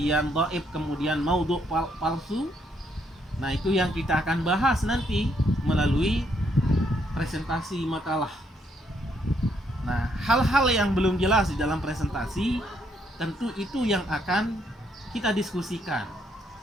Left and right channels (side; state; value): both; normal; correlation 0.73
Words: dhaif, kemudian maudhu, palsu? Nah, itu yang kita akan bahas nanti melalui presentasi makalah. Nah, hal-hal yang belum jelas di dalam presentasi tentu itu yang akan kita diskusikan,